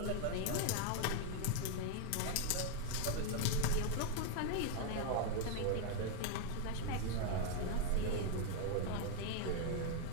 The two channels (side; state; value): both; different; correlation 0.00